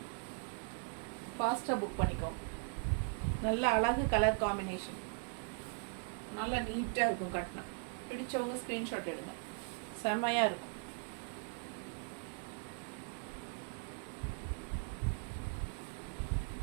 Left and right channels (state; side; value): quieter; left; 39.3 dB